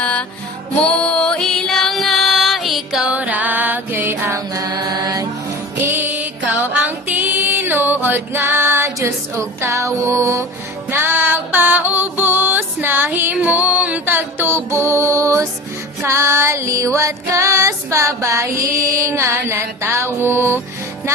mo ilang nga ikaw ragyo'y angay. Ikaw ang tinuod nga Diyos ug tawo, nagpaubos na himong tagtubos, kaliwat kas babayi nga natawo,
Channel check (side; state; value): both; normal; correlation 0.36